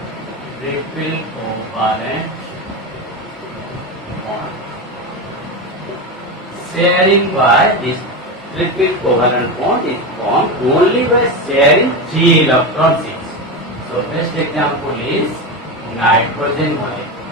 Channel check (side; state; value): both; normal; correlation 0.18